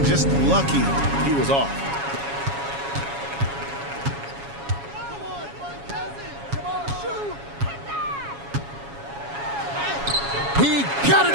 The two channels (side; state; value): left; late; 7.2 ms